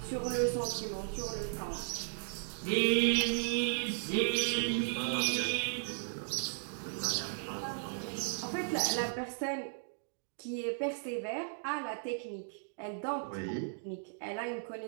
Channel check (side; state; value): left; silent; digital silence